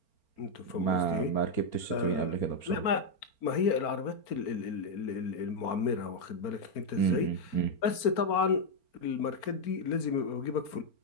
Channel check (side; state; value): right; late; 4.4 ms